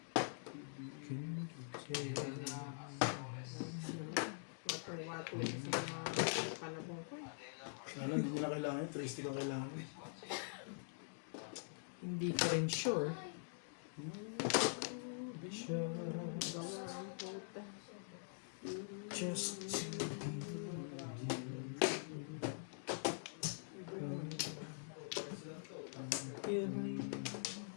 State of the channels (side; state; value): right; silent; digital silence